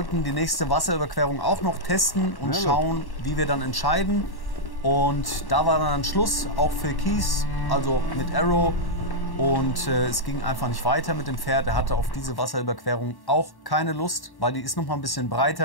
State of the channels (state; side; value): late; right; 1.1 ms